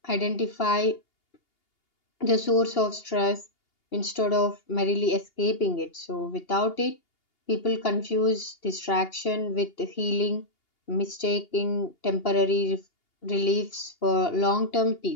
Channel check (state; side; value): late; right; 2.8 ms